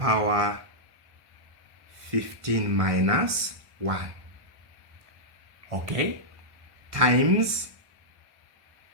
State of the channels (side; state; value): left; late; 1.1 ms